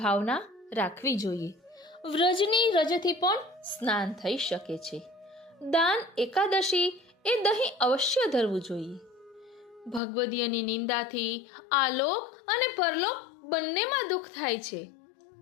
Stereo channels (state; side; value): drops out; right; at 10.0 s